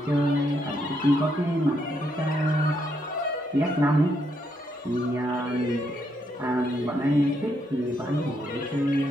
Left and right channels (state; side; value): normal; both; correlation 0.77